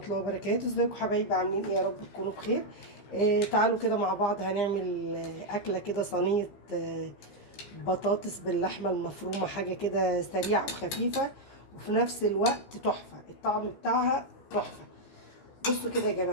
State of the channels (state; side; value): late; right; 15 ms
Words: الله وبركاته. ازيكم حبايبي؟ عاملين ايه؟ يا رب تكونوا بخير. تعالوا كده مع بعض هنعمل أكلة كده، صينية بطاطس باللحمة المفرومة. حاجة كده سريعة وخفيفة وفي نفس الوقت تحفة، الطعم بتاعها تحفة. بصوا كده يا